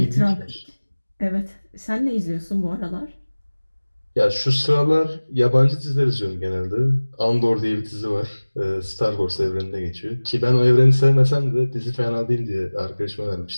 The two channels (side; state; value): both; inverted; correlation -1.00